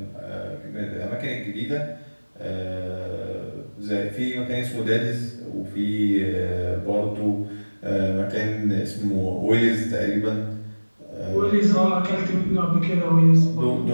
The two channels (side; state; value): both; inverted; correlation -1.00